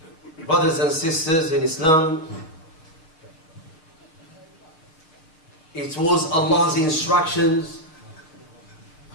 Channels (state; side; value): late; right; 6.4 ms